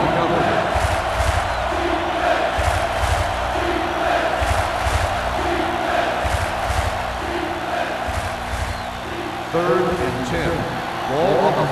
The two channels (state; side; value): identical; both; correlation 1.00